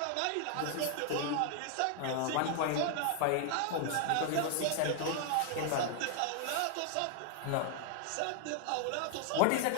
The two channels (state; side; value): different; both; correlation 0.00